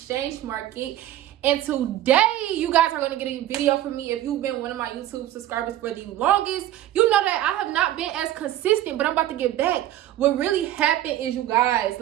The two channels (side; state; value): left; quieter; 13.3 dB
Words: market. And today, you guys are going to get a video from me. If you've been one of my YouTube subscribers for the longest, you know that I have not been as consistent, but I'm about to get back. What really happened is, you guys,